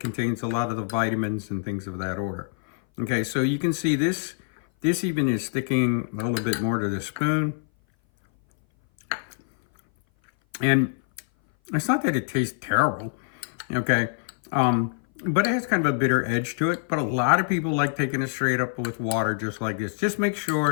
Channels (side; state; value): right; silent; 58 dB below the other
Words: contains a lot of the vitamins and things of that order. Okay, so you can see this even is sticking a little bit more to the spoon. And it's not that it tastes terrible, okay? But it has kind of a bitter edge to it. But a lot of people like taking it straight up with water just like this. Just make